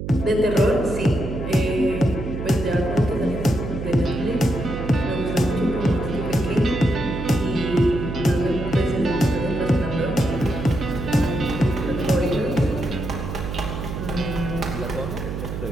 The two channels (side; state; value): right; noise; hum, 6 dB below the sound